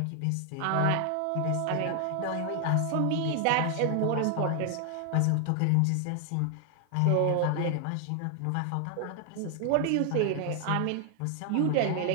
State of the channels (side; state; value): both; different; correlation 0.00